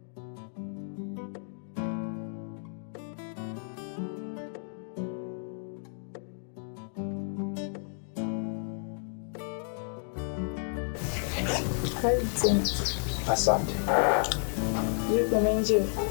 Asante. Yuko umeenjoy?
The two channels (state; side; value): silent; right; digital silence